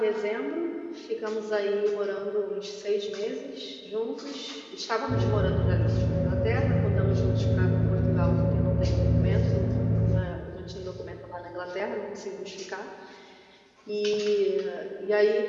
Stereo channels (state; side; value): identical; both; correlation 1.00